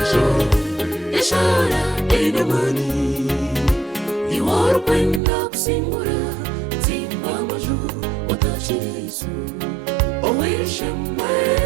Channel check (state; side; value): drops out; left; at 5.2 s